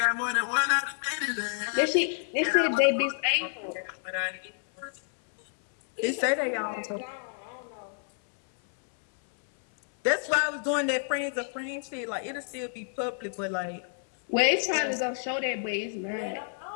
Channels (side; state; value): right; silent; 59 dB below the other